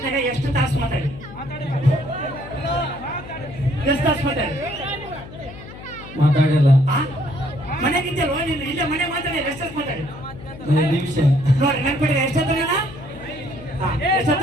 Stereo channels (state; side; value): noise; left; hum, 15 dB below the sound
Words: ಎಷ್ಟು ತಾಸು ಮಾತಾಡಿ? ಎಷ್ಟು ತಾಸು ಮಾತಾಡಿ? ಮಾತಾಡಿಲ್ಲ. ಮನೆಗಿದ್ದಲ್ವ ನೀನು? ಇಲ್ಲೇ ಮನೆ ಮಾತಾಡಿ ಎಷ್ಟು ತಾಸು ಮಾತಾಡಿ? ನಿಮಿಷ ನೋಡಿ ನೆನ್ಪಿಡಿ. ಎಷ್ಟೊತ್ತ